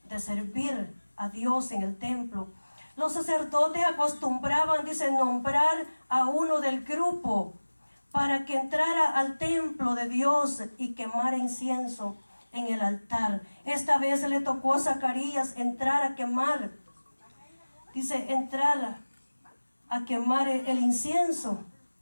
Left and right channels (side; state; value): both; inverted; correlation -1.00